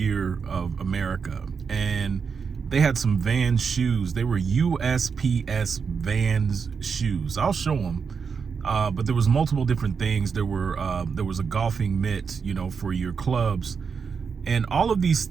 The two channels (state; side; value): quieter; left; 5.9 dB